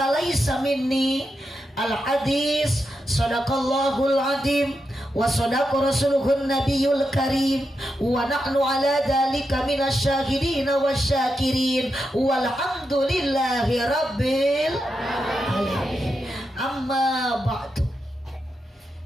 minni. Al-hadis sadaqallahul azim wa sadaqa rasuluhun nabiyul karim wa nahnu ala dhalika minasyahidin wasyakirin walhamdulillahi rabbil alamin. Amma ba'du.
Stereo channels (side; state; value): both; normal; correlation 0.86